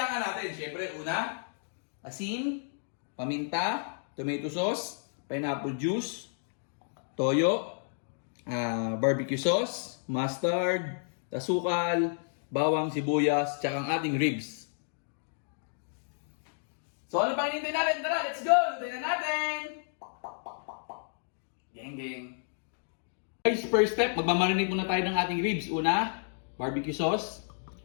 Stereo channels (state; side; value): silent; right; digital silence